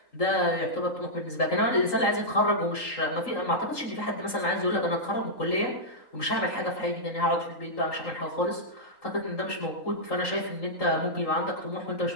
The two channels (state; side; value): late; right; 3.8 ms